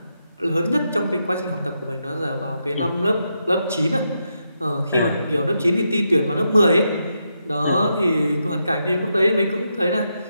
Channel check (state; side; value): inverted; both; correlation -0.83